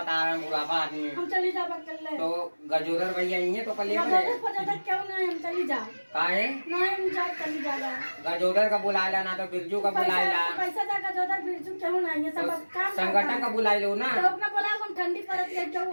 तारा बुढ़ापा आदमी हम चली जावा कर ले तो गजोदर भैया ये तो कल गजोदर पता क्यों ना हम चली जा काहे ना हम जा चली जावा गजोदर का बुलाएला ना तो बिरजू का बुलाएला पैसा दा गजोदर बिरजू क्यों ना ये सब तो काम संगठन का बुलाई लो ना तो अपना बोला हम ठंडी पड़त है क्यों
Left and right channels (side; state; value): both; inverted; correlation -1.00